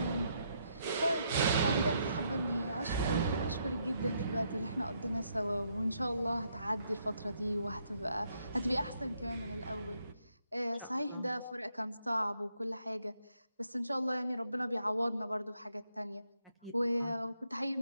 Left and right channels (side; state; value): both; inverted; correlation -0.76